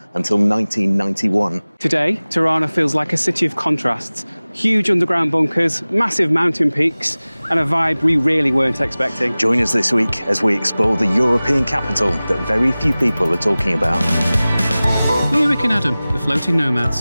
until 1991. Today, Tirana feels like a city of contrasts. Huge underground bunkers, massive mountain peaks, and a vibe we really weren't expecting. Join us this week as we explore the European capital that very few people are talking about. We're Rick and Adam, the floating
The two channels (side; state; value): both; inverted; correlation -0.98